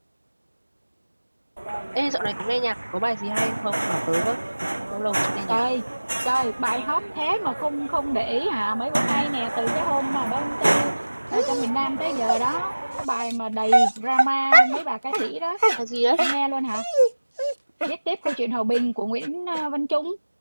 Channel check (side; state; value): both; inverted; correlation -1.00